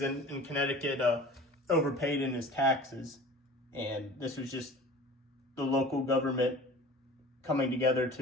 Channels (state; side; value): normal; both; correlation 0.41